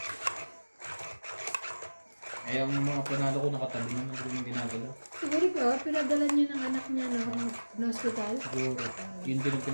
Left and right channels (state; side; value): inverted; both; correlation -1.00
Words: Eh, ang mga panalo ko nakatabi naman ko yung ginagalaw. Siguro ko, pinadala niya ng anak niya na hospital. Siguro, yun din ang